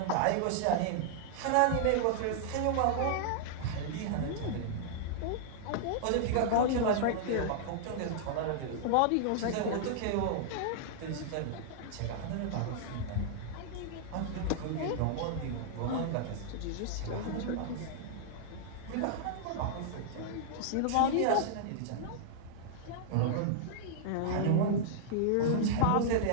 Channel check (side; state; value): both; different; correlation -0.01